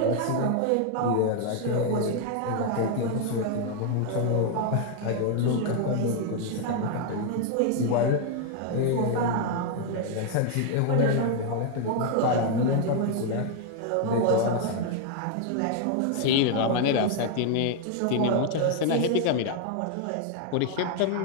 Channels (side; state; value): both; different; correlation 0.00